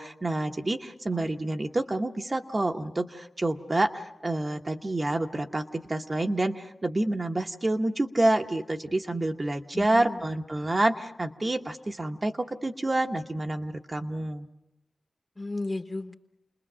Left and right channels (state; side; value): normal; both; correlation 0.98